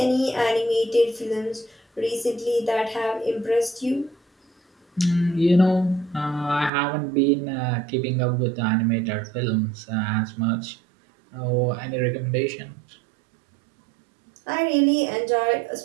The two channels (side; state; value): left; drops out; at 6.7 s